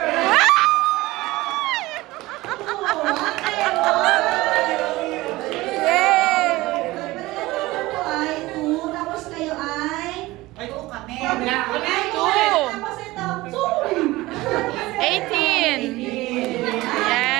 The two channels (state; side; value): quieter; left; 19.3 dB